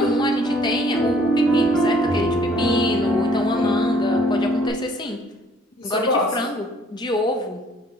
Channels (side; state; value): both; normal; correlation 0.60